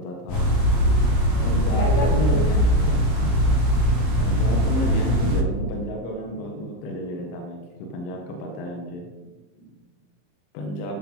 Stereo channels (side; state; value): right; late; 33 ms